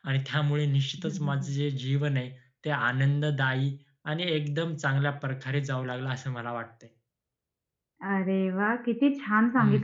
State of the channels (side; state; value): both; identical; correlation 1.00